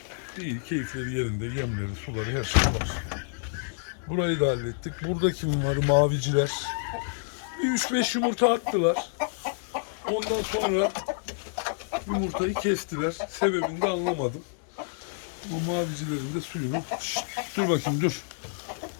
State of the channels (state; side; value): silent; right; 59 dB below the other